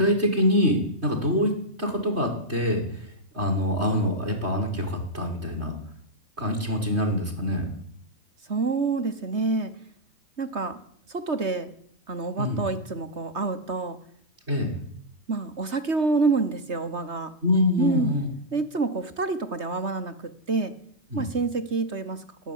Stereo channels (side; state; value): left; late; 3.2 ms